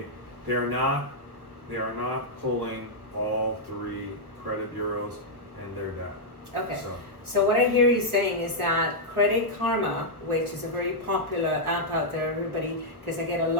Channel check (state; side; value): late; left; 1.3 ms